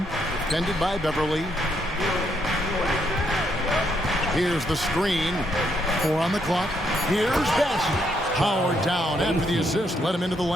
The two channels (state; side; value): normal; both; correlation 0.75